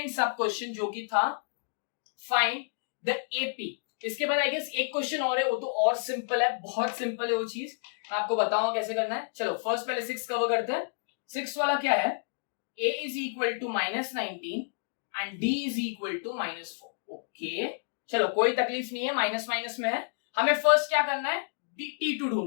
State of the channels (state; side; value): silent; right; digital silence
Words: sub question, जो कि था फाइंड द एपी। इसके बाद आई गेस एक क्वेश्चन और है, वो तो और सिंपल है, बहुत सिंपल है वो चीज, मैं आपको बताऊंगा कैसे करना है। चलो फर्स्ट पहले 6 कवर करते हैं। 6 वाला क्या है, a is equal to -19 and d is equal to -4। Okay, चलो कोई तकलीफ नहीं है, माइनस माइनस में है। हमें फर्स्ट क्या करना है, T2